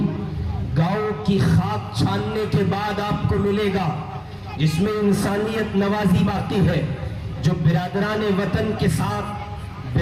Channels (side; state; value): both; identical; correlation 1.00